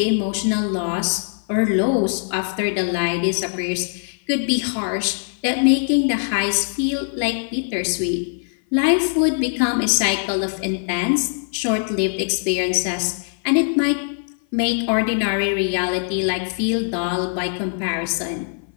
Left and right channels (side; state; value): right; silent; 55 dB below the other